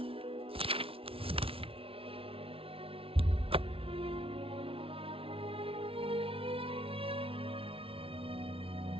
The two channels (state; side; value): late; left; 0.26 ms